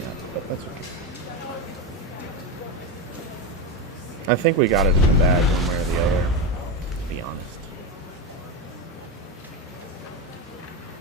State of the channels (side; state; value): both; normal; correlation 0.14